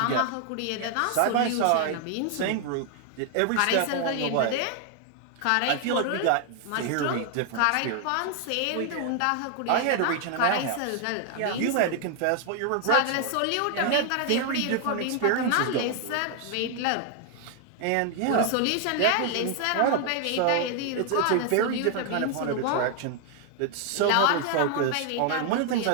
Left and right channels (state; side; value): different; both; correlation 0.00